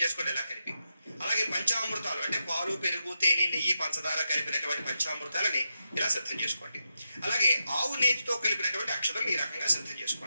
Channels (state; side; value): inverted; both; correlation -0.85